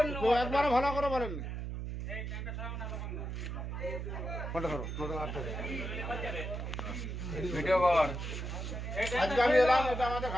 একবারে ভালো করে বলেননি। আজকে আমি এলাম, এটা আমাদের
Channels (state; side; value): noise; right; hum, 5 dB below the sound